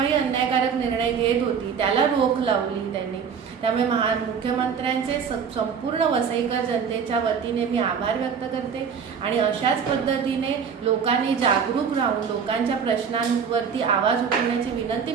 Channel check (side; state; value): left; quieter; 6.6 dB